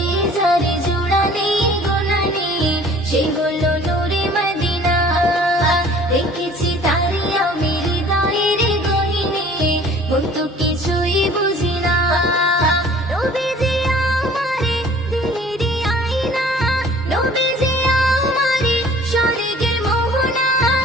যারে জোড়ানি গোনানি সে হলো নূরে মদিনা। দেখেছি তারে আমি হৃদয়ের গহীনে, কিন্তু কিছুই বুঝি না। নবীজি আমারে দিলেরই আয়না, নবীজি আমারে স্বর্গের মোহনা,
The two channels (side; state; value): both; normal; correlation 0.50